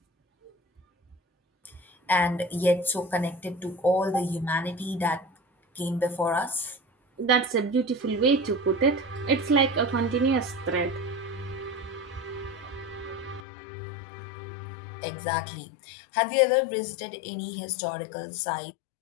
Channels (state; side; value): drops out; right; at 13.4 s